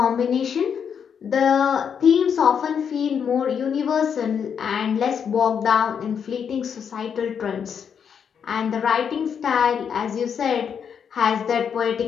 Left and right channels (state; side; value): quieter; right; 7.4 dB